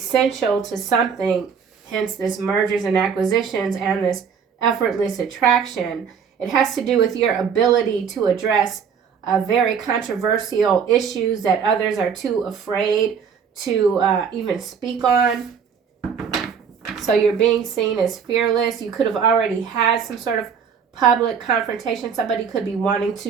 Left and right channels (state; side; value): quieter; left; 6.8 dB